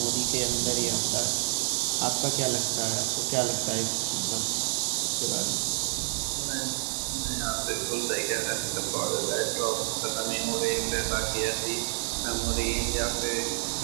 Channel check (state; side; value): silent; left; digital silence